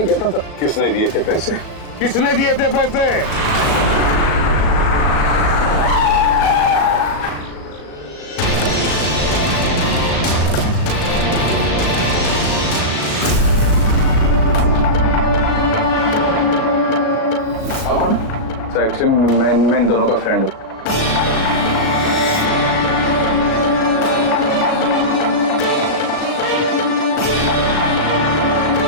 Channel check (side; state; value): right; late; 37 ms